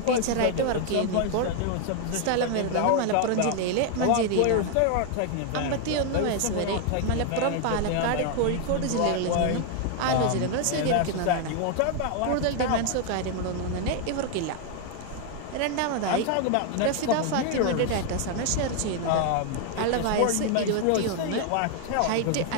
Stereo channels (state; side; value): different; both; correlation 0.01